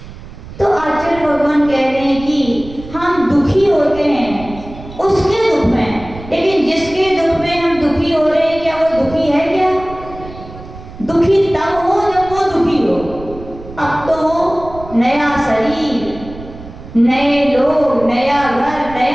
तो आचार्य भगवान कह रहे हैं कि हम दुखी होते हैं उसके दुख में, लेकिन जिसके दुख में हम दुखी हो रहे हैं क्या वो दुखी है क्या। दुखी तब हो जब वो दुखी हो। अब तो वो नया शरीर, नए लोग, नया घर,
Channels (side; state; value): right; noise; rumble, 15 dB below the sound